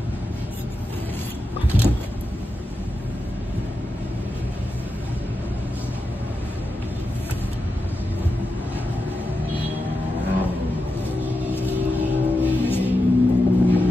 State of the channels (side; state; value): both; normal; correlation 0.89